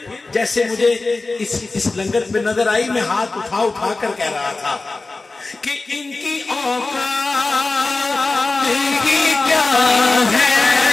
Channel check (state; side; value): quieter; right; 3.5 dB